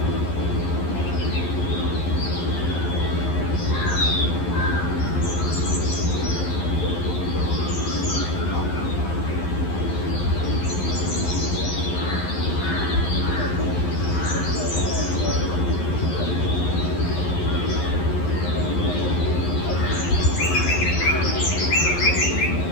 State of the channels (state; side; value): late; right; 11 ms